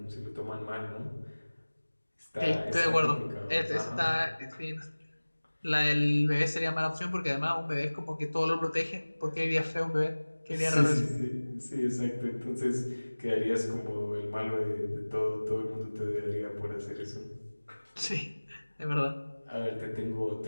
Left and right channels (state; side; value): inverted; both; correlation -1.00